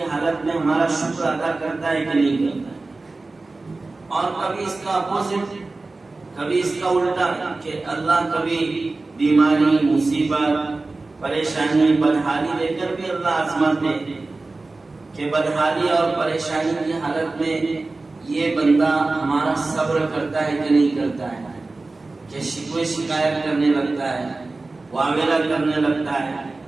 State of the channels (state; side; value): quieter; left; 3.4 dB